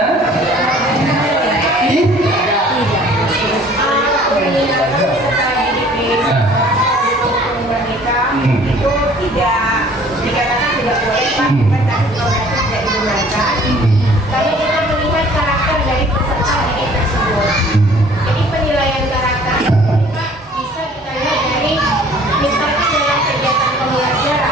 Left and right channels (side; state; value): both; normal; correlation 0.53